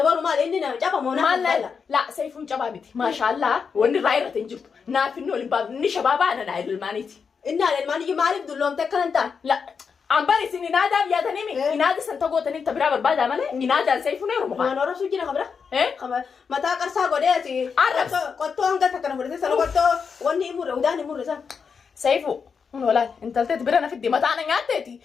mal ini na japa mona mal la saya pun coba biti mashallah wani raira tinjuk na finno limbab ni shababa na idul maniti inna al mani malib dulom te kalanta la ambari sini nada ya tanimi inada santago tanim tabira barbada male inada saya pun ero ma nora sujina khabra khabra mata karsa gode ati arab qotto anga takana furde salo qotto wani imure udani imure sa saifu wala intaltet birana fiddi mata ana ngateti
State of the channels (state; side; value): quieter; right; 5.9 dB